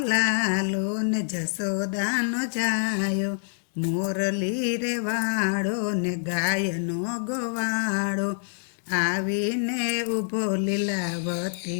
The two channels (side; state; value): right; silent; digital silence